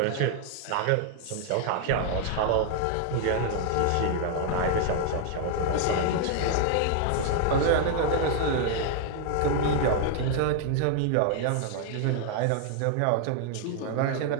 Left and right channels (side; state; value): both; different; correlation 0.00